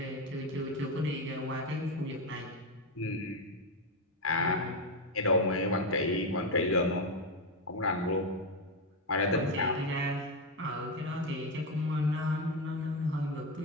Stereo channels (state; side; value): normal; both; correlation 0.09